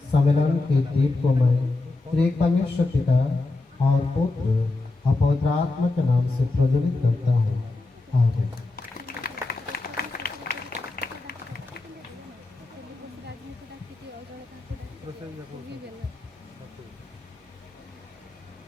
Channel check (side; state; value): right; quieter; 3.2 dB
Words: सम्मेलन के दीप को मैं त्रिएक परमेश्वर पिता और पुत्र और पवित्र आत्मा के नाम से प्रज्वलित करता हूँ। आमीन।